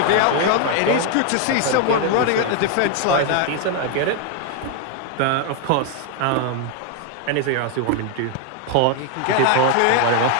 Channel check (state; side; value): different; both; correlation 0.01